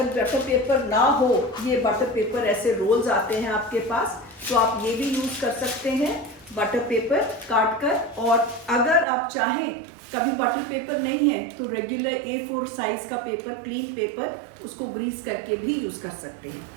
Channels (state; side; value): drops out; left; at 9.1 s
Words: बटर पेपर ना हो, ये बटर पेपर ऐसे रोल्स आते हैं आपके पास, तो आप ये भी यूज कर सकते हैं बटर पेपर काट कर. और अगर आप चाहें कभी बटर पेपर नहीं है तो रेगुलर A4 साइज का पेपर, क्लीन पेपर, उसको ग्रीस करके भी यूज कर सकते हैं.